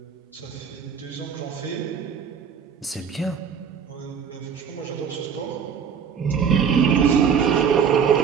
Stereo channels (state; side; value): quieter; left; 7.0 dB